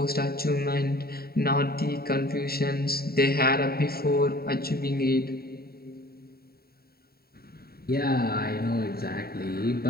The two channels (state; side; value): late; right; 0.45 ms